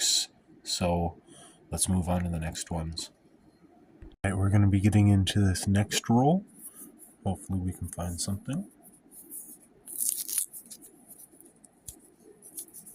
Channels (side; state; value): both; identical; correlation 1.00